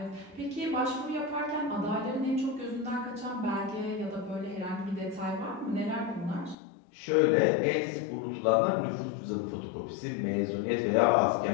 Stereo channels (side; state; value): right; drops out; at 6.6 s